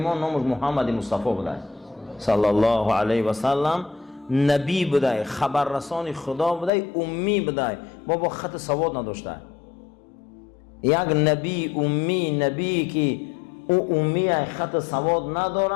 ما نامش محمد مصطفی بوده صلی الله علیه و سلم. نبی بوده، خبررسان خدا بوده، امی بوده، بابا خط سواد نداشته. یک نبی امی، نبی که او امی خط سواد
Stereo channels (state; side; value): drops out; right; at 6.7 s